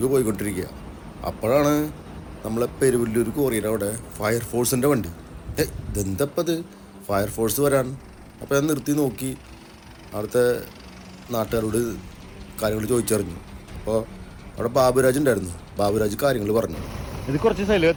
പോയിക്കൊണ്ടിരിക്കുക. അപ്പോഴാണ് നമ്മളെ പെരുവല്ലൂർ കോറിയുടെ അവിടെ ഫയർഫോഴ്സിൻ്റെ വണ്ടി. ഇതെന്തപ്പത് ഫയർഫോഴ്സ് വരാൻ? അപ്പോൾ ഞാൻ നിർത്തി നോക്കി. അവിടുത്തെ നാട്ടുകാരോട് കാര്യങ്ങൾ ചോദിച്ചറിഞ്ഞു. അപ്പോൾ അവിടെ ബാബുരാജ് ഉണ്ടായിരുന്നു. ബാബുരാജ് കാര്യങ്ങൾ പറഞ്ഞു. ഇത് കുറച്ച് സ്ഥലം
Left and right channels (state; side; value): identical; both; correlation 1.00